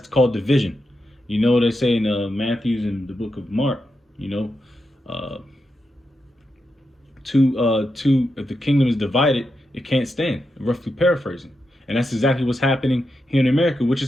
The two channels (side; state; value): both; normal; correlation 0.86